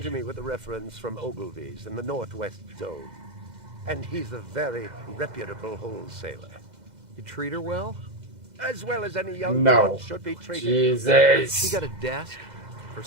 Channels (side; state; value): left; late; 2.0 ms